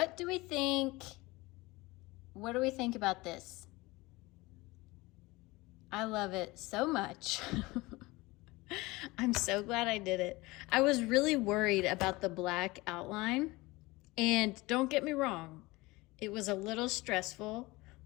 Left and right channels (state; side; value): quieter; right; 21.8 dB